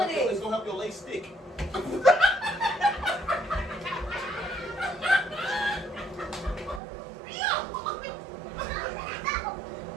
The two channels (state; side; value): drops out; left; at 6.8 s